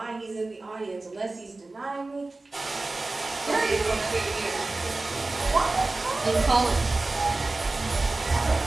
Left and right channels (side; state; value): left; quieter; 3.2 dB